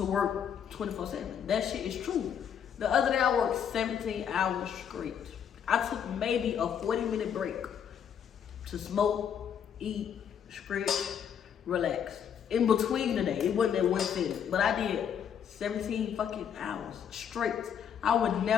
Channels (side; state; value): right; quieter; 8.3 dB